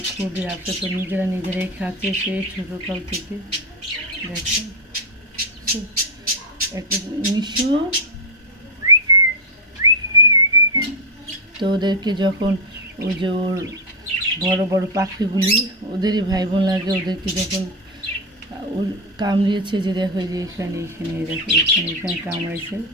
খুবই আফসোস। তো নিজেরাই খাচ্ছে সেই ছোটোকাল থেকে। দেখো একটা মিশু। তো ওদেরকে যখন ওই যে ওর বড় বড় পাখিগুলি ওদেরই ভাই বোন লাগে, ওদেরকে যখন ওর কামড়িয়েছে, যে দেখো যে এখানে দেখো এখানে কামড়াইছে,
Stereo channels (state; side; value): normal; both; correlation 0.04